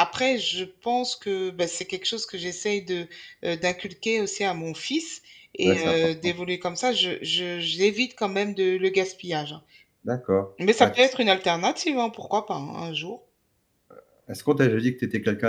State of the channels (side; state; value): both; identical; correlation 1.00